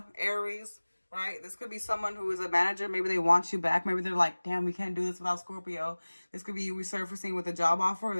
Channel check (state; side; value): inverted; both; correlation -1.00